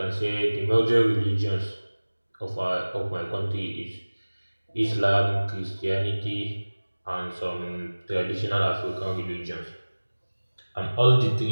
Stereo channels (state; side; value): inverted; both; correlation -1.00